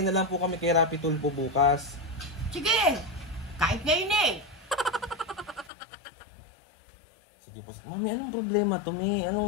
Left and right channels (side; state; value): right; drops out; at 5.7 s